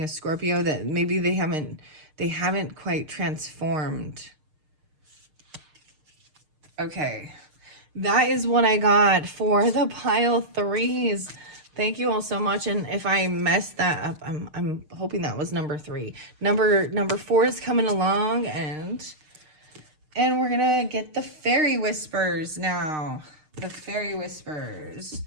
a Scorpio that maybe they haven't quite transformed. Okay, that is what I got for the pile 3s. Thank you all so much. And if I messed that up, I'm hoping that was number 3. Number 4 is coming along, and we're gonna get the Fairy Whispers now. The Fairy Whispers.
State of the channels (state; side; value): late; left; 6.6 ms